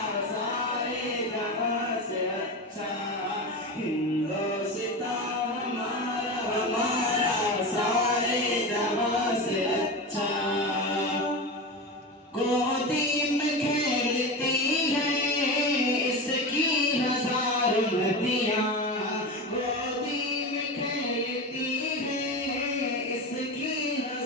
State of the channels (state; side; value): normal; both; correlation 0.23